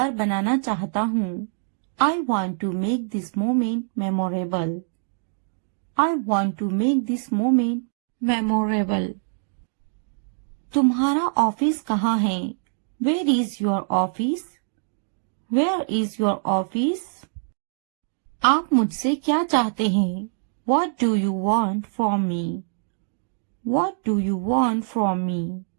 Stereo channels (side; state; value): left; silent; digital silence